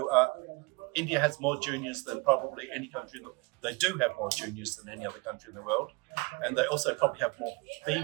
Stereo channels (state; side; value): quieter; left; 27.8 dB